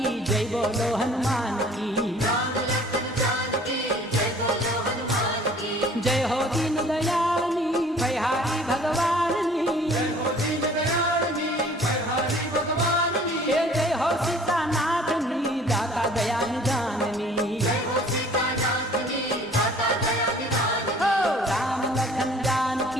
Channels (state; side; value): normal; both; correlation 0.52